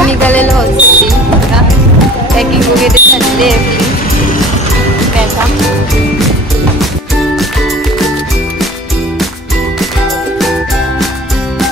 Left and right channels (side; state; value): both; normal; correlation 0.44